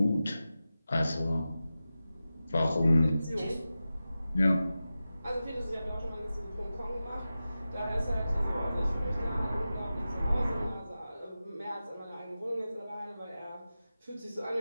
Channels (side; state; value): both; inverted; correlation -0.94